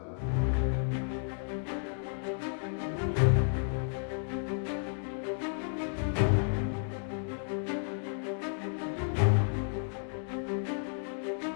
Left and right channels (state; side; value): silent; right; 56 dB below the other